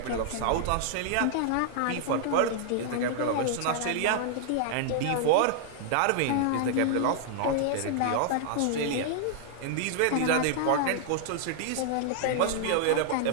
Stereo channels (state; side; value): different; both; correlation -0.01